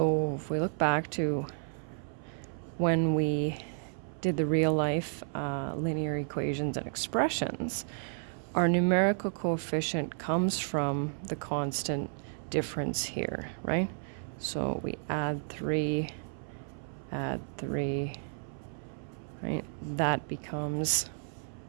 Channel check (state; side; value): silent; left; 56 dB below the other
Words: if we look back to when we did the real life linear equations and expressions, our numerical coefficient comes from the constant difference here, right? So we add 3, right? That becomes